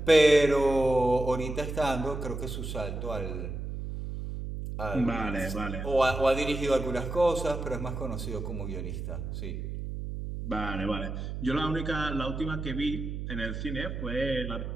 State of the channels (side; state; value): right; noise; hum, 6 dB below the sound